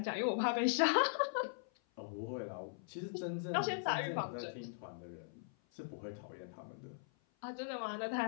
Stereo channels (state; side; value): silent; right; 51 dB below the other